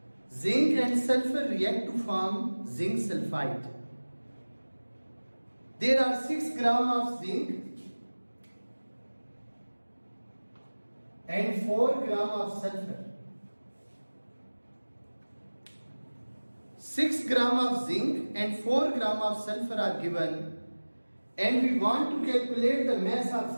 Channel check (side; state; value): both; inverted; correlation -1.00